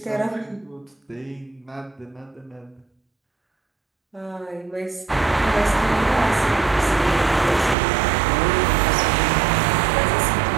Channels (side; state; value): left; drops out; at 7.8 s